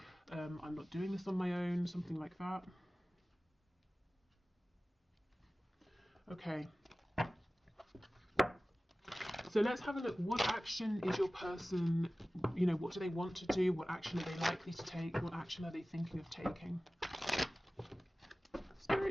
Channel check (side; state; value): both; normal; correlation 0.97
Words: I'm not doing this on my own, something like that. Okay. So let's have a look. What action is your person, you know, what do they want to do? What action are they likely to take? What action are they thinking of taking?